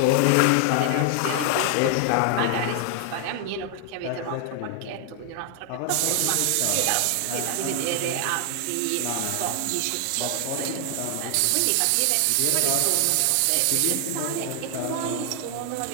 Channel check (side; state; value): both; different; correlation 0.00